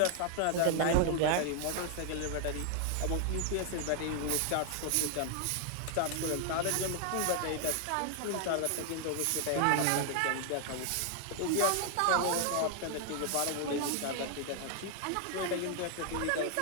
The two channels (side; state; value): both; different; correlation 0.00